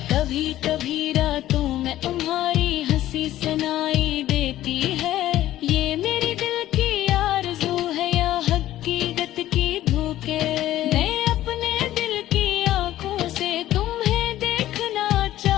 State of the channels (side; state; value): right; quieter; 13.9 dB